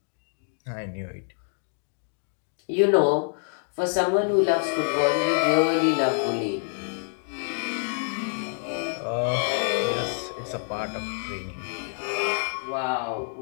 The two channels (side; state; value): right; silent; digital silence